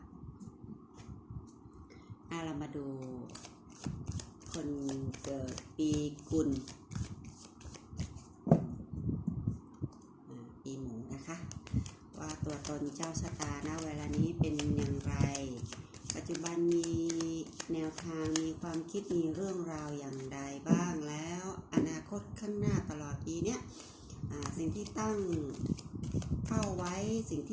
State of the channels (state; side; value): identical; both; correlation 1.00